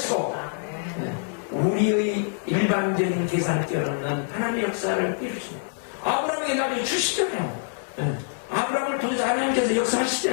우리의 일반적인 계산을 뛰어넘는 하나님의 역사를 이루십니다. 아브라함에게 나중에 주시잖아요. 아브라함을 통해서 하나님께서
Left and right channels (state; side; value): silent; right; 58 dB below the other